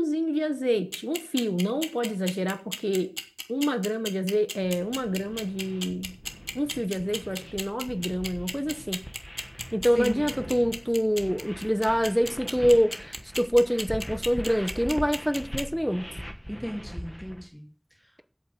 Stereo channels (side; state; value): both; identical; correlation 1.00